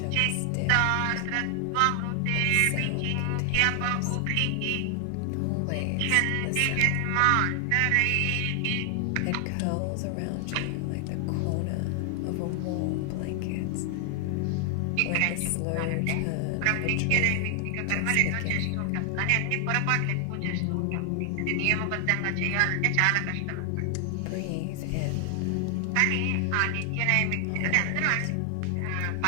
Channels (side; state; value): both; different; correlation 0.00